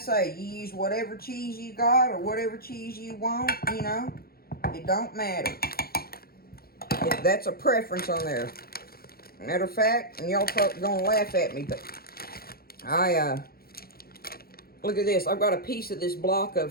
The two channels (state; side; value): late; right; 0.44 ms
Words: you use whatever cheese you got or whatever cheese you want, you know. It don't matter. That's a preference on there. Matter of fact, and y'all probably gonna laugh at me, but look at this. I've got a piece of this block